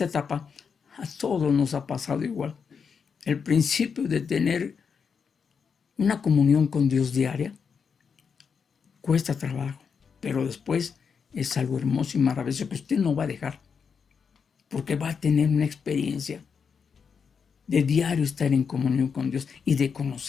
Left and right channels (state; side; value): quieter; right; 6.2 dB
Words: etapa, a todos nos ha pasado igual. El principio de tener una comunión con Dios diaria cuesta trabajo, pero después es algo hermoso y maravilloso que usted no va a dejar, porque va a tener una experiencia de diario estar en comunión con Dios y de